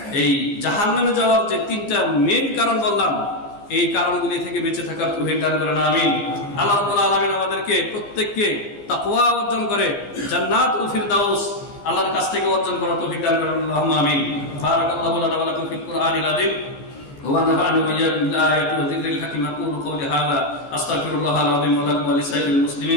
এই জাহান্নামে যাওয়ার যে তিনটা মেইন কারণ বললাম, এই কারণগুলি থেকে বেঁচে থাকার তৌফিক দান করেন, আমিন। আল্লাহ রাব্বুল আলামিন আমাদেরকে প্রত্যেককে তাকওয়া অর্জন করে জান্নাতুল ফিরদাউস আল্লাহর কাছ থেকে অর্জন করার তৌফিক দান করেন, আল্লাহুম্মা আমিন। বারাকাল্লাহু লানা ওয়া লাকুম ফিল কুরআনিল আযীম ওয়া নাফা'নি ওয়া ইয়্যাকুম বিল আয়াতি ওয়া যিকরিল হাকীম। আকুলু কওলি হাযা আস্তাগফিরুল্লাহাল আযীম ওয়া লাকুম ওয়া লিসাইরিল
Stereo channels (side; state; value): right; late; 15 ms